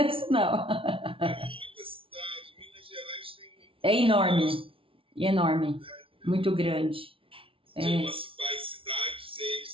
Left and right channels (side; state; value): left; late; 0.26 ms